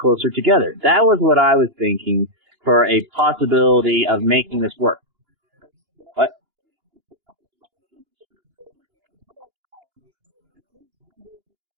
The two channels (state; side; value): late; left; 2.9 ms